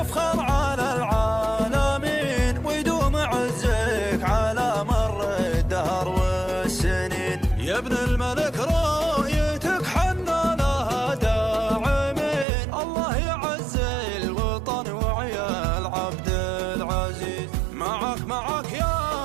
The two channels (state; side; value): drops out; left; at 12.5 s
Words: على العالمين ويدوم عزك على مر الدهر والسنين. يا ابن الملك رؤيتك حنا لها داعمين. الله يعز الوطن وعيال عبد العزيز. معك